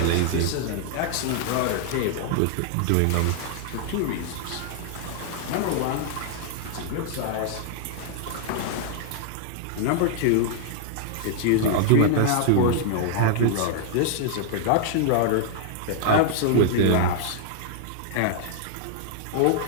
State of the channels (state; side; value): different; both; correlation 0.00